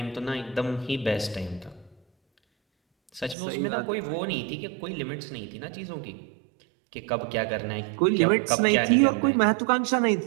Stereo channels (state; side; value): drops out; left; at 3.4 s